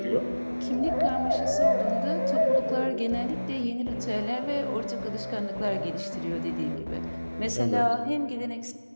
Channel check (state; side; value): inverted; both; correlation -1.00